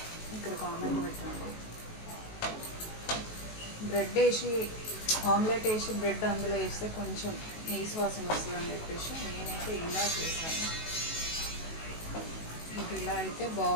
ఇక్కడ కామెంట్ పెట్టండి. బ్రెడ్ వేసి ఆమ్లెట్ వేసి బ్రెడ్ అందులో వేస్తే కొంచెం నీసు వాసన వస్తుందని చెప్పేసి నేనైతే ఇలా చేస్తాను. ఇలా అయితే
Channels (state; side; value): late; right; 19 ms